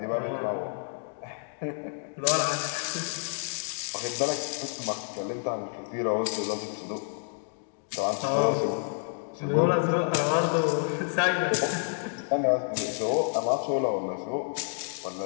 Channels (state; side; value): silent; right; digital silence